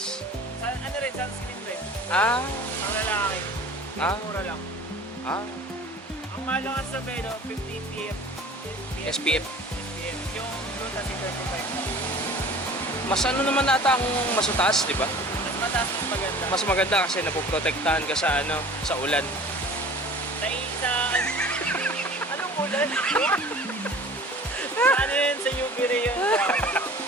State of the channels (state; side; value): normal; both; correlation 0.44